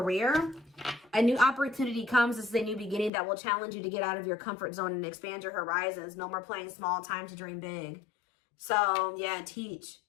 a new opportunity comes. This is a new beginning that will challenge you to get out of your comfort zone and expand your horizons. No more playing small, time to dream big. So yeah, teach.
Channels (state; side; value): drops out; right; at 3.1 s